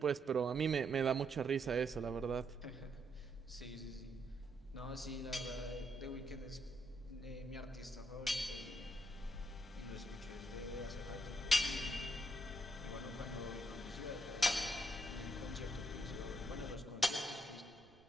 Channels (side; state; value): right; noise; rumble, 25 dB below the sound